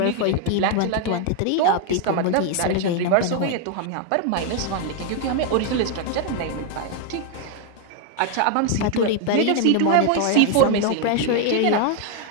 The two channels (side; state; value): both; different; correlation 0.01